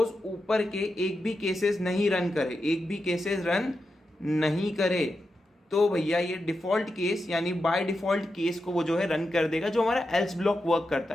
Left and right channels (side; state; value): both; normal; correlation 0.88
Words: ऊपर के एक भी केसेस नहीं रन करे, एक भी केसेस रन नहीं करे, तो भैया ये डिफॉल्ट केस यानी बाय डिफॉल्ट केस को वो जो है रन कर देगा, जो हमारा एल्स ब्लॉक वर्क